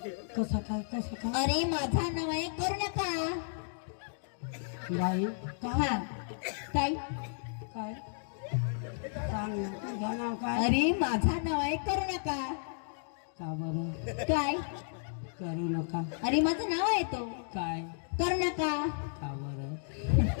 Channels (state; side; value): silent; right; digital silence